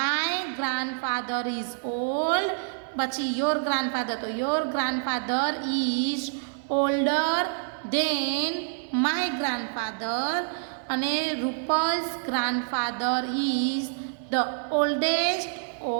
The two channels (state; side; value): silent; left; 60 dB below the other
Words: ગ્રાન્ડફાધર ઇઝ ઓલ્ડ, પછી યોર ગ્રાન્ડફાધર, તો your grandfather is older than my grandfather અને Rupal's grandfather is the oldest